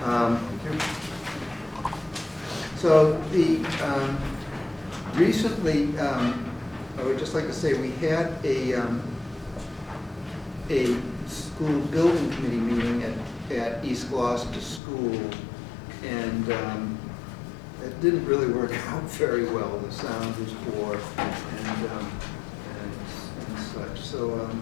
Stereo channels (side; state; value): right; drops out; at 14.8 s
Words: So recently, I would just like to say we had a school building committee meeting at East Gloucester School, and it didn't really work out very well. The sound was poor and such. So